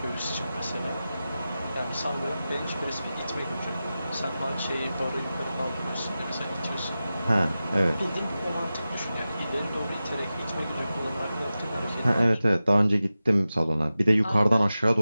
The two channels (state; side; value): inverted; both; correlation -0.94